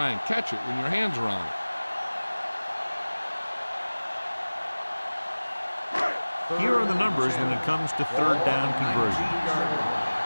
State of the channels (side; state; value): both; inverted; correlation -1.00